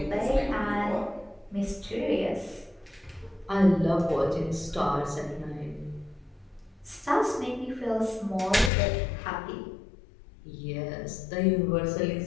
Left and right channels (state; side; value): drops out; right; at 8.7 s